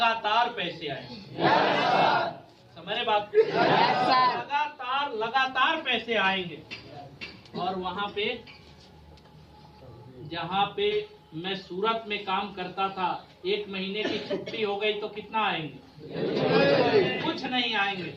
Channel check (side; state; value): both; identical; correlation 1.00